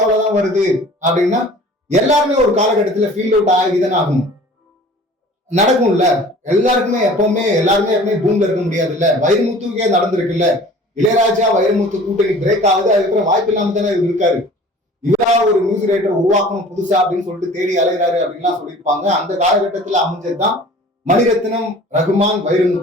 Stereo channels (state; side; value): normal; both; correlation 0.46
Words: அவ்வளவுதான் வருது அப்படின்னா எல்லாருமே ஒரு காலகட்டத்துல ஃபீல் அவுட் ஆகிதானே ஆகணும், நடக்கும்ல. எல்லாருக்குமே எப்பவுமே எல்லாருமே பூம்ல இருக்க முடியாது இல்ல. வைரமுத்துக்கே நடந்திருக்குல்ல. இளையராஜா வைரமுத்து கூட்டணி பிரேக் ஆகுது, அதுக்கப்புறம் வாய்ப்பு இல்லாம தானே இவர் இருக்காரு. இவரா ஒரு மியூசிக் ரைட்டர் உருவாக்கணும் புதுசா அப்படின்னு சொல்லிட்டு தேடி அலைகிறாரு அப்படின்லாம் சொல்லியிருப்பாங்க. அந்த காலகட்டத்துல அமைஞ்சதுதான் மணிரத்னம், ரகுமான்,